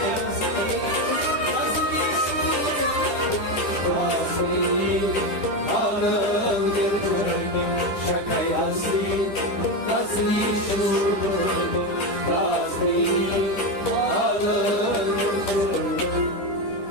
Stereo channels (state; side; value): late; right; 9.7 ms